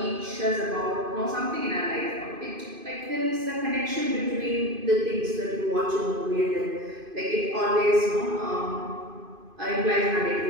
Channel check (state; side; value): late; left; 2.5 ms